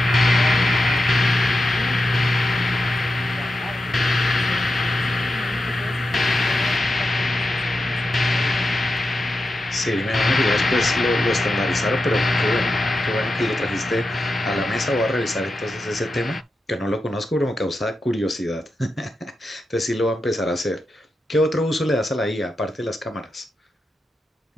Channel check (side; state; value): both; normal; correlation 0.89